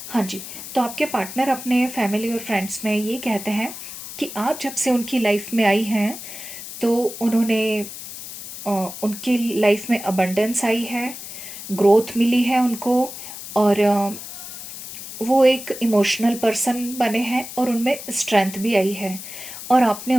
हाँ जी, तो आपके पार्टनर अपने फैमिली और फ्रेंड्स में ये कहते हैं कि आप जब से उनकी लाइफ में आई हैं तो उन्होंने उनकी लाइफ में अबंडेंस आई है, ग्रोथ मिली है उनको, और वो एक इमोशनल पर्सन बने हैं और उनमें स्ट्रेंथ भी आई है। और आपने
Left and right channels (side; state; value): left; noise; hiss, 11 dB below the sound